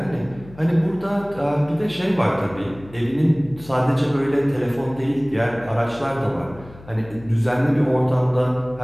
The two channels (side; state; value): left; noise; hum, 20 dB below the sound